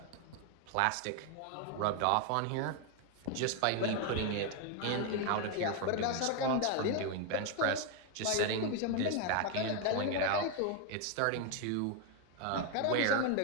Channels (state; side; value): different; both; correlation 0.01